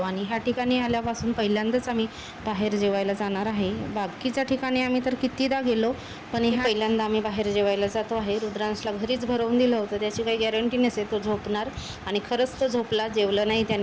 आणि ह्या ठिकाणी आल्यापासून पहिल्यांदाच आम्ही बाहेर जेवायला जाणार आहे. बाकीच्या ठिकाणी आम्ही तर कितीदा गेलो, पण ह्या पहिल्यांदा आम्ही बाहेर जेवायला जातो आहे. रुद्रांशला घरीच भरवून दिलं होतं, त्याची काही गॅरंटी नसेल तो झोपणार, आणि खरंच तो झोपला. जेवलं नाही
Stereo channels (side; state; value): both; identical; correlation 1.00